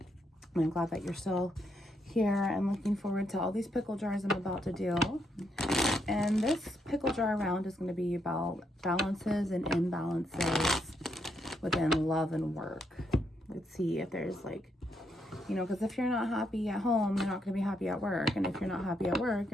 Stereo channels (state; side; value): normal; both; correlation 0.77